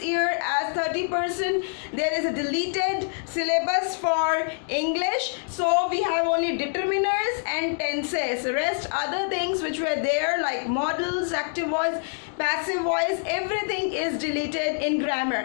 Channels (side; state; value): right; silent; 61 dB below the other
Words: year, as 30% there is a deleted syllabus for English, so we have only determiners and tenses. The rest other things which were there like modals, active voice, passive voice, everything is deleted in